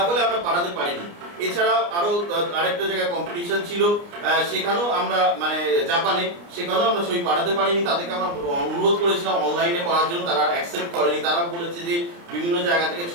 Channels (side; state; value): left; late; 29 ms